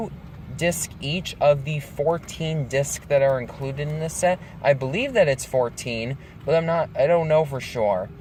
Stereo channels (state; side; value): identical; both; correlation 1.00